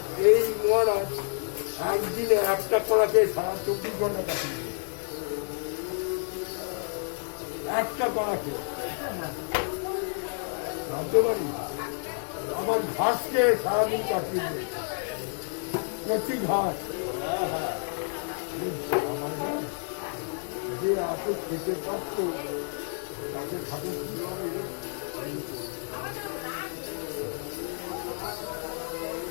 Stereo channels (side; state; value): right; silent; 58 dB below the other